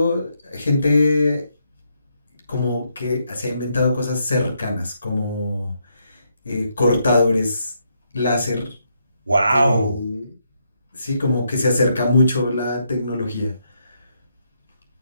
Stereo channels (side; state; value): both; inverted; correlation -0.78